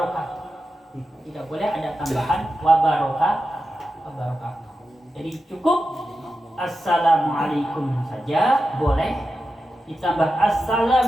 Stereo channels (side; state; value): both; normal; correlation 0.91